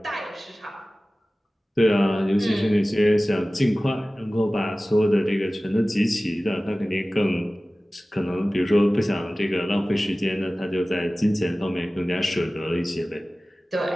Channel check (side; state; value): both; normal; correlation 0.97